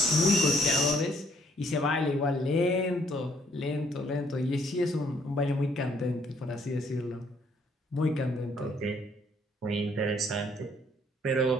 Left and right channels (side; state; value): both; normal; correlation 0.65